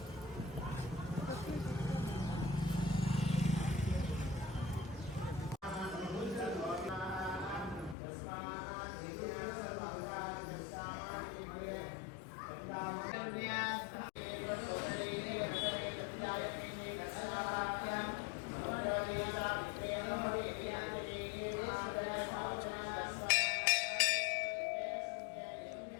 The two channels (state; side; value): drops out; right; at 8.0 s